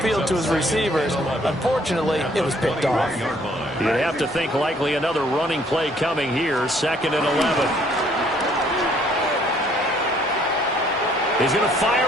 to his receivers. Unfortunately, it was picked off. You'd have to think likely another running play coming here, 2nd and 11. He's going to fire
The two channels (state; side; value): normal; both; correlation 0.63